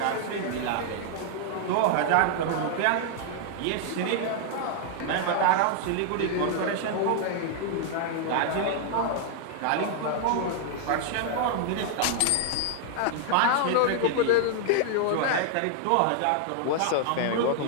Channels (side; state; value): both; different; correlation 0.00